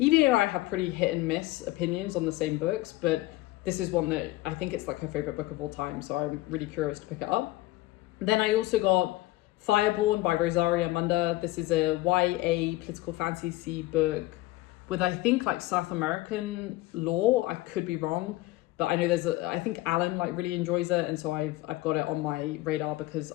and I have pretty hit and miss opinions on the same books, but this is one that I think it's her favorite book of all time, so I'm really curious to pick it up. Then I also got Fireborn by Rosaria Munda. This is a YA political fantasy book with I think South American lore. I could be wrong, but I know I think Alan really enjoys it, and so I've got it on my radar because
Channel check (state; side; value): quieter; right; 17.9 dB